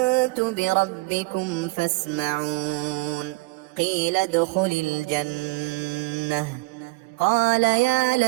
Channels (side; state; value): left; quieter; 23.6 dB